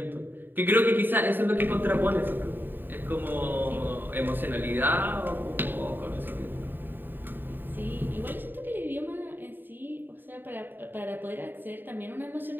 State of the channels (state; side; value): late; left; 0.093 ms